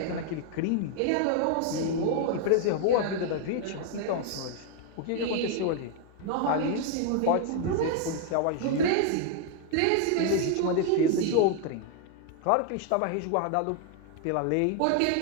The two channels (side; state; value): both; different; correlation 0.00